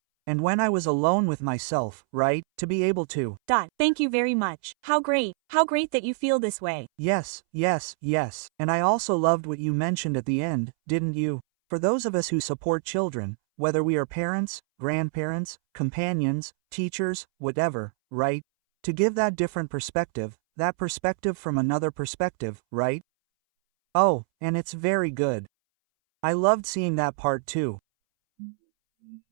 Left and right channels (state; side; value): silent; left; 61 dB below the other